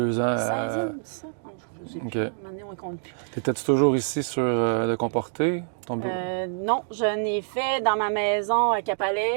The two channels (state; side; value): silent; left; digital silence